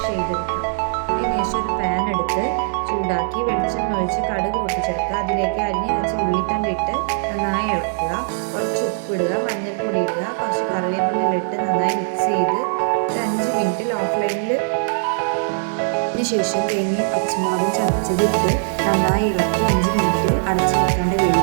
ചെയ്തെടുക്കുക. അതിനുശേഷം ഒരു പാൻ എടുത്ത് ചൂടാക്കി വെളിച്ചെണ്ണ ഒഴിച്ച് കടുക് പൊട്ടിച്ചെടുക്കുക. അതിലേക്ക് അരിഞ്ഞ് വെച്ച ഉള്ളിത്തണ്ട് ഇട്ട് നന്നായി ഇളക്കുക. കുറച്ച് ഉപ്പിടുക, മഞ്ഞൾപ്പൊടി ഇടുക, കുറച്ച് കറിവേപ്പില ഇട്ട് നന്നായി മിക്സ് ചെയ്ത് ഒരു 5 മിനിറ്റ് ലോ ഫ്ലെയിമിൽ ശേഷം തേങ്ങയും പച്ചമുളകും ചതച്ചതിട്ട് നന്നായി ഇളക്കി 5 മിനിറ്റ് അടച്ചു വെക്കാണ്ട്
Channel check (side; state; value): left; silent; digital silence